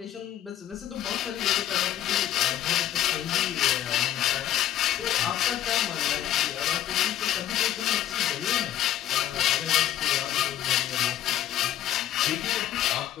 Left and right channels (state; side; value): quieter; right; 12.0 dB